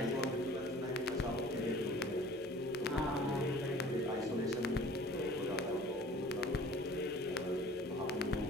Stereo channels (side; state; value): both; normal; correlation 0.47